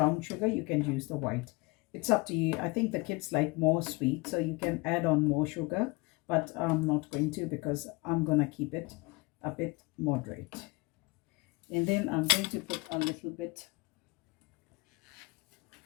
sugar. You can use the white. It's up to you. I think the kids like more sweet, so you can add on more sugar. But I'm not going to, because I'm going to keep it a bit moderate. And then I'm going to put a little bit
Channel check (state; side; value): quieter; right; 25.3 dB